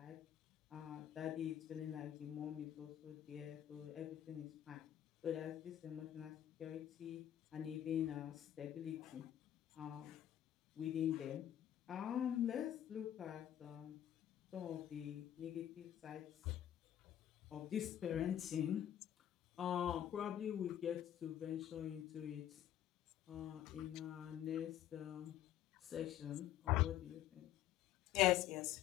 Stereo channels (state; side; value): quieter; right; 11.4 dB